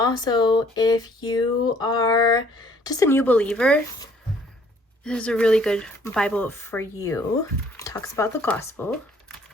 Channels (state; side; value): normal; both; correlation 0.60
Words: if you are just a new believer. This is a really good Bible for you. It talks about the gospel,